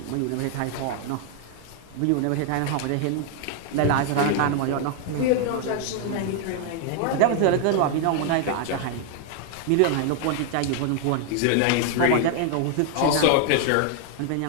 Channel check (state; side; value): different; both; correlation 0.00